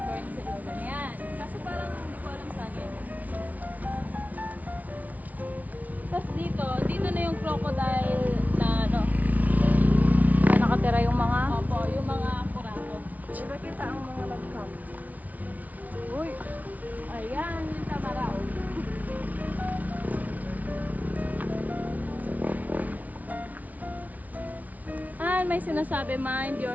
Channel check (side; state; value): left; late; 0.073 ms